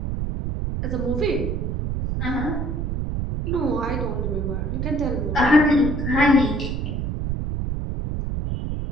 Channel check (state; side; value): noise; right; rumble, 2 dB below the sound